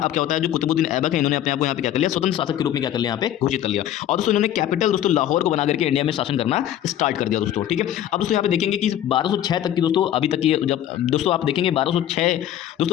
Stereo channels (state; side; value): quieter; right; 11.5 dB